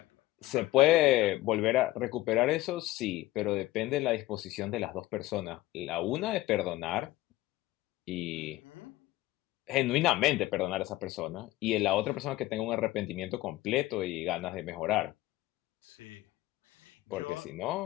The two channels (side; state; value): right; quieter; 17.2 dB